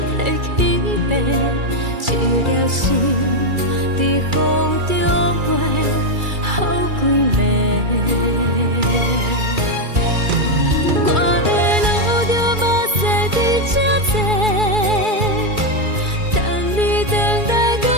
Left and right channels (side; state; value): left; late; 2.3 ms